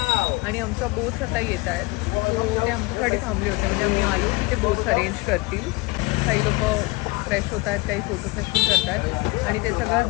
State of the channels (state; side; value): quieter; right; 23.2 dB